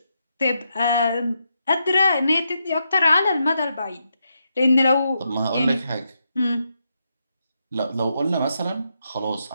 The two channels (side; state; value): both; inverted; correlation -0.82